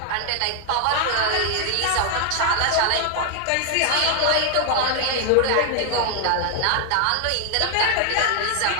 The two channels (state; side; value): different; both; correlation 0.00